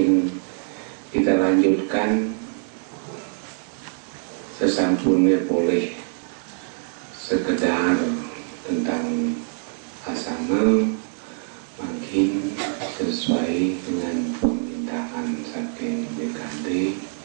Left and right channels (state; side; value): silent; left; 55 dB below the other